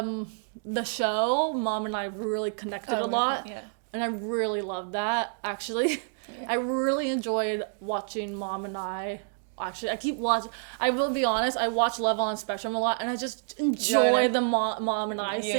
show, Mom and I really connected a lot. Yeah. And I really love that, actually. Yeah. I really enjoyed watching Mom and I. Actually, I keep watching. I will be honest. I watch Love on the Spectrum a lot, and I just enjoy the mom and I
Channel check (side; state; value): left; silent; digital silence